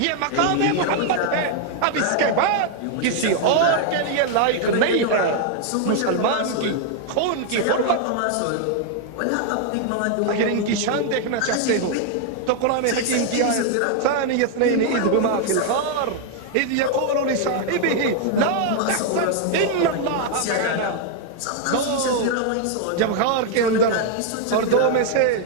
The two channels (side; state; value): both; different; correlation 0.00